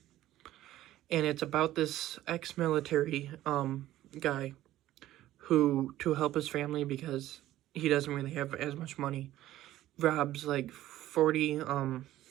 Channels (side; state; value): left; quieter; 14.4 dB